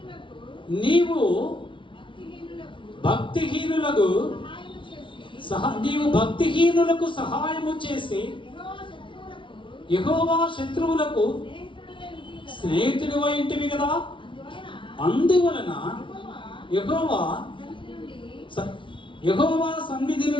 నీవు భక్తిహీనులకు సహాయము చేసి యెహోవా శత్రువులకు స్నేహితుడు ఇంటివి కదా. అందువలన యెహోవా సన్నిధి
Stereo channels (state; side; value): late; right; 0.25 ms